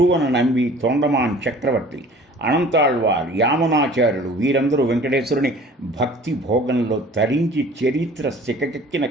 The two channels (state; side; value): normal; both; correlation 0.48